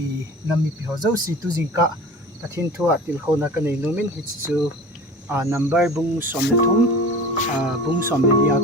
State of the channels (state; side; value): normal; both; correlation 0.38